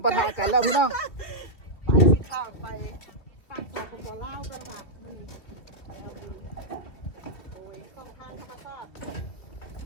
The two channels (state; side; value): late; right; 2.8 ms